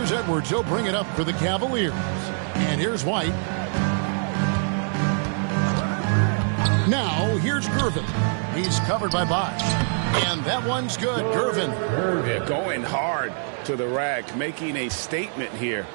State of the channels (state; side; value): silent; left; 59 dB below the other